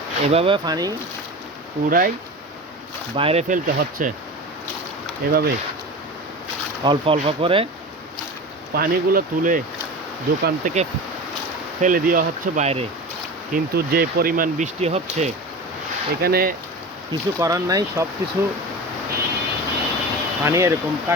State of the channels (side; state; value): both; normal; correlation 0.30